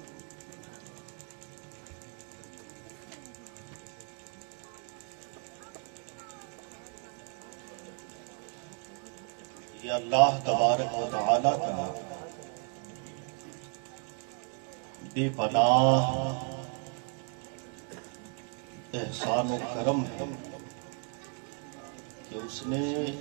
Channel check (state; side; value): quieter; left; 39.6 dB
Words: یہ اللہ تبارک و تعالی کا بے پناہ احسان و کرم ہے کہ اس نے